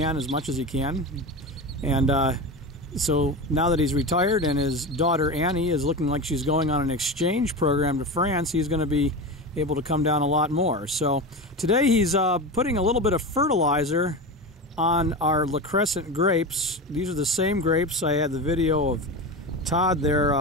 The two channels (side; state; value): both; normal; correlation 0.23